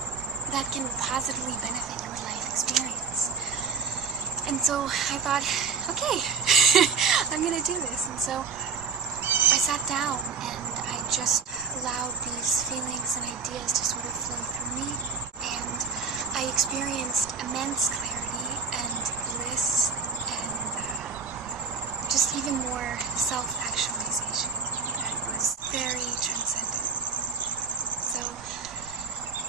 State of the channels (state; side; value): quieter; left; 5.3 dB